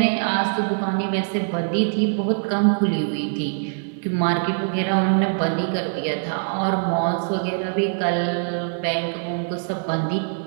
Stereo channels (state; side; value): silent; left; digital silence